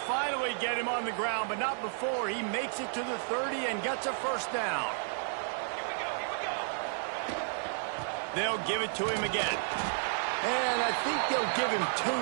finally get him on the ground, but not before he makes it to the 30 and gets a first down. They'll give it to him again. And I think they'll give him 2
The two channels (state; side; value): silent; left; 56 dB below the other